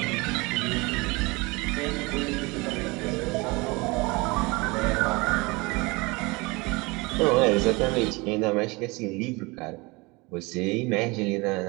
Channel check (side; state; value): left; quieter; 25.2 dB